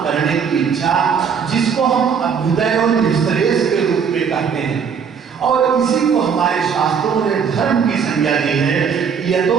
करने की इच्छा, जिसको हम अभ्युदय और निश्रेयस के रूप में कहते हैं। और इसी को हमारे शास्त्रों ने धर्म की संज्ञा दी है। यदो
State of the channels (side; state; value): left; quieter; 6.7 dB